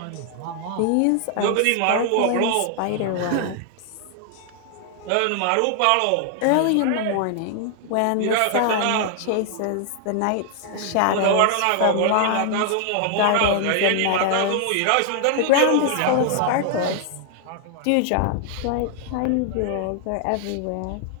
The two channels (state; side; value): different; both; correlation 0.00